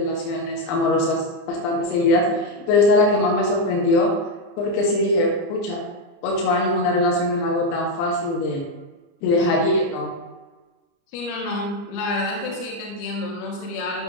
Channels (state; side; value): late; right; 29 ms